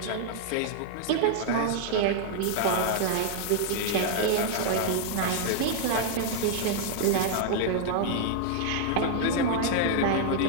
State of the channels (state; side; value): different; both; correlation 0.00